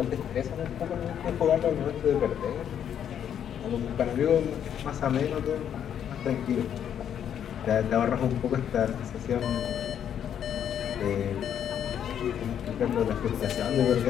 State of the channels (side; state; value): right; quieter; 9.2 dB